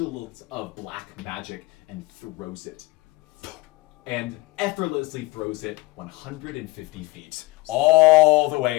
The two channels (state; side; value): quieter; right; 21.7 dB